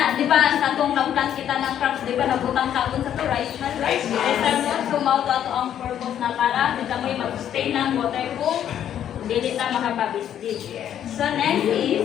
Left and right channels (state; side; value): quieter; right; 10.1 dB